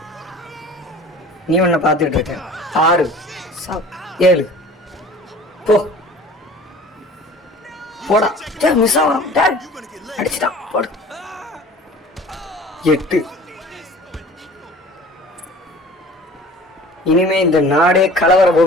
நீ ஒன்ன பார்த்துட்டு இருக்க. 6. சாவ். 7. போ போடா. மிஸ் ஆகும். அடிச்சுட்டான். போடு. 8. இனிமே இந்த நாடே கலவர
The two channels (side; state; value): both; normal; correlation 0.45